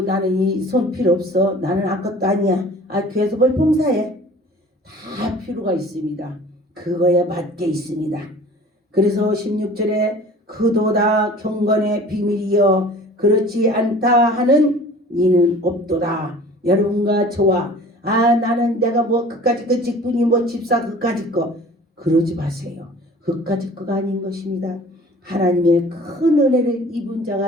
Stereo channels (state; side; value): normal; both; correlation 0.46